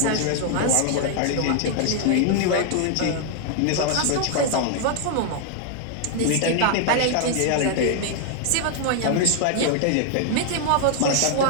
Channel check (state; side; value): different; both; correlation 0.00